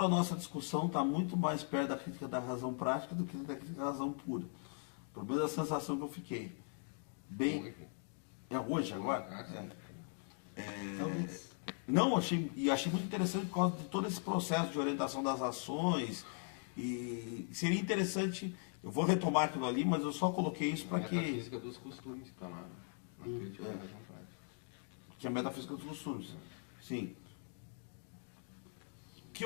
a nossa discussão está muito mais perto da crítica da razão prática do que da crítica da razão pura. Pelo menos a sensação que eu fiquei. Hoje, agora? Não, achei muito interessante por causa de todo esse processo de orientação das ações. E seria interessante, eu vou retomar aquilo ali, mas eu só coloquei isso para que... A física dos costumes está lá. que é a metafísica dos costumes. Sim. Que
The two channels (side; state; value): right; silent; 51 dB below the other